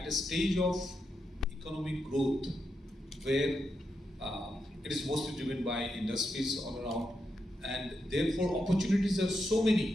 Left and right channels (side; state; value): both; normal; correlation 0.85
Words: a stage of economic growth where it is mostly driven by industries all around, and therefore opportunities are so